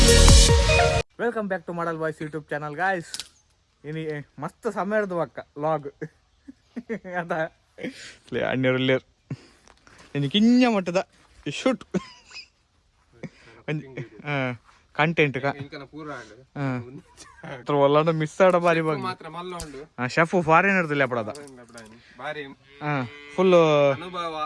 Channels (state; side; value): identical; both; correlation 1.00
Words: welcome back to model boys YouTube channel guys. ಇನಿ ಮಸ್ತ್ ಸಮಯ ಹಿಡ್ದು ಅಕ್ಕ ಲಾಗ್ ಅದ ಅಣ್ಣೂರಲ್ಲಿಯರ್ ಇನ್ನು ಕಿಂಜ ಮಟ್ಟದ ಶೂಟ್ ಕಂಟೆಂಟ್ ಒಲ್ಲ ಮಿಸ್ ಆಡ ಬಾರಿ ಶೆಫ್ ಫಾರಿನರ್ದಲ್ಲಿ ಅಪಡದ ಫುಲ್